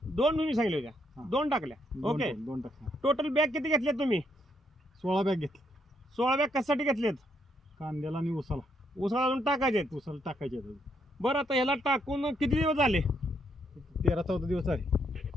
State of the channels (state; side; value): normal; both; correlation 0.75